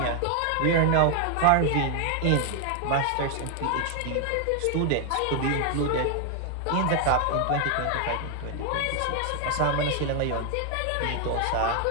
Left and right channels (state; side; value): different; both; correlation 0.01